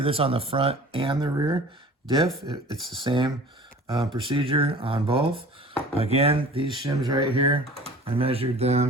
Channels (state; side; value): normal; both; correlation 0.44